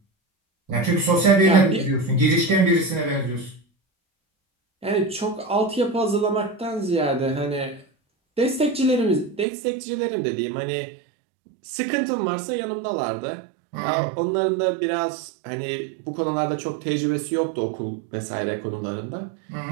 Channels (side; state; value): left; drops out; at 9.5 s